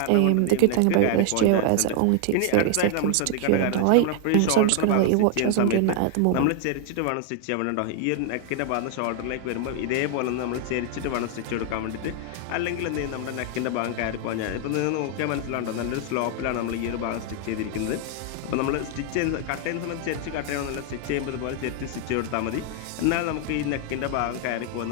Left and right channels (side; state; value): both; different; correlation 0.00